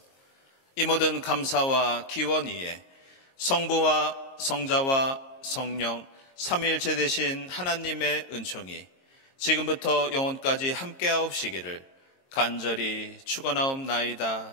이 모든 감사와 기원 위에 성부와 성자와 성령 삼위일체 되신 하나님의 은총이 지금부터 영원까지 함께하옵시기를 간절히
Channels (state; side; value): late; right; 22 ms